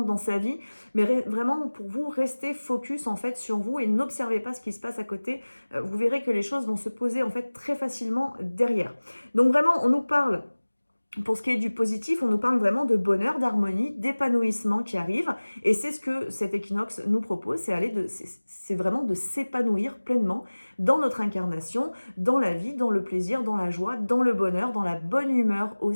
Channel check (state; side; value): inverted; both; correlation -1.00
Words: dans sa vie. Mais vraiment, pour vous, restez focus en fait sur vous et n'observez pas ce qui se passe à côté. Vous verrez que les choses vont se poser en fait très facilement derrière. Donc vraiment, on nous parle, pour ce qui est du positif, on nous parle vraiment de bonheur, d'harmonie, d'épanouissement qui arrive. Et c'est ce que cet équinoxe nous propose, c'est vraiment de s'épanouir pleinement dans notre incarnation, dans la vie, dans le plaisir, dans la joie, dans le bonheur, dans la bonne humeur